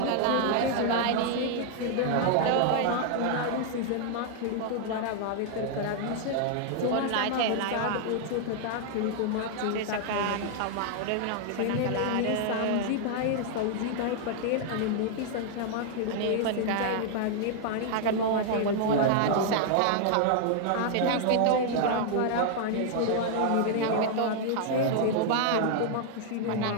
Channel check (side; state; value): both; different; correlation 0.00